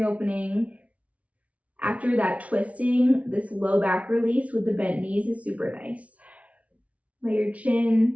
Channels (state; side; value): late; left; 0.066 ms